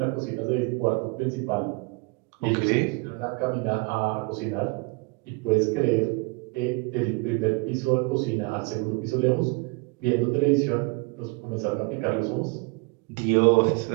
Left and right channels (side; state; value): left; quieter; 28.9 dB